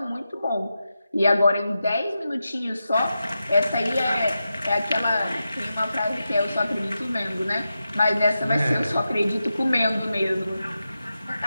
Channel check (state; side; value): inverted; both; correlation -0.90